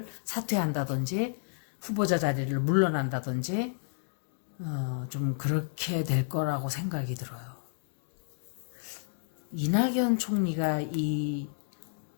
사퇴한다든지 후보자 자리를 물러난다든지 좀 그렇게 될 거라고 생각이 들어요. 이낙연 총리가 이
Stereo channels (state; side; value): silent; right; digital silence